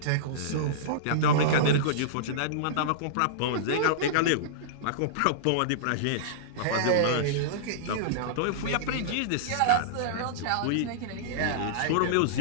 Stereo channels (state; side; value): different; both; correlation -0.03